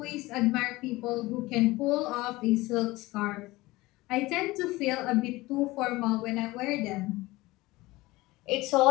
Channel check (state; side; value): quieter; right; 20.0 dB